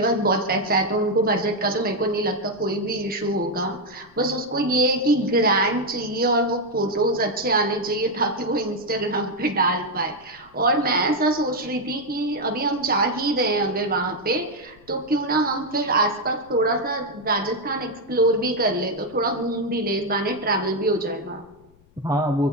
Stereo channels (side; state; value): left; noise; rumble, 29 dB below the sound